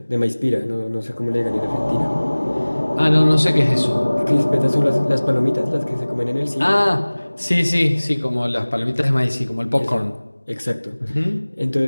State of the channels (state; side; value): inverted; both; correlation -1.00